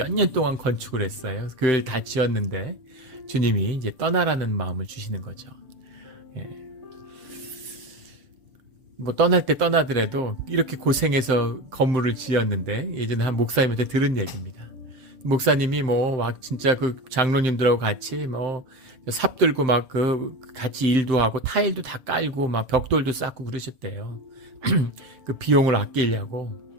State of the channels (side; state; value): left; late; 7.7 ms